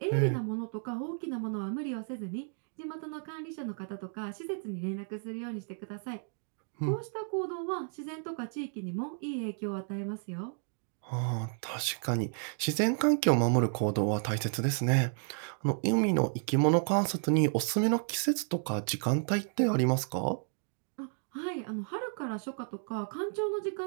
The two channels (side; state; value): left; silent; 56 dB below the other